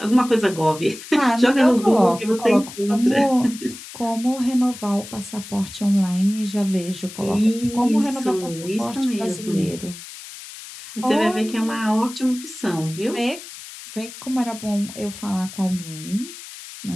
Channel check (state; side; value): noise; left; hiss, 14 dB below the sound